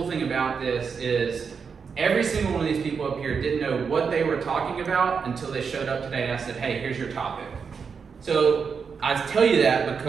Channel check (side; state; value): left; quieter; 5.9 dB